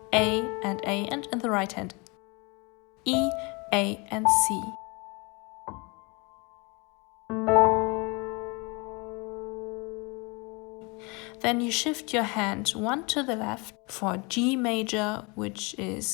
A, and in the right hand E, A, and C. Then you shift your hand one to the left for G major, which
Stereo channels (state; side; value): quieter; right; 29.0 dB